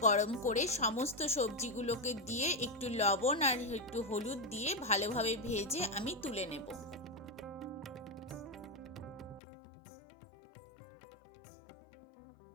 গরম করে সমস্ত সবজিগুলোকে দিয়ে একটু লবণ আর একটু হলুদ দিয়ে ভালোভাবে ভেজে আমি তুলে নেব।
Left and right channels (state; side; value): drops out; right; at 9.4 s